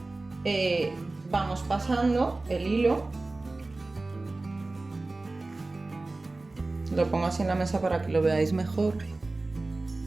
vamos pasando el hilo, lo pongo así en la mesa para que lo veáis mejor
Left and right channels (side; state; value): left; quieter; 3.2 dB